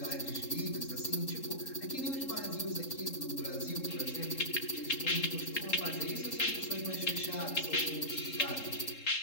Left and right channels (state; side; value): late; right; 3.7 ms